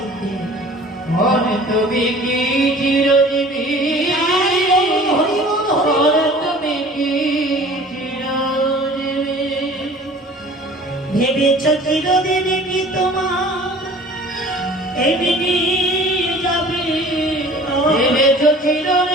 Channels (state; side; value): normal; both; correlation 0.46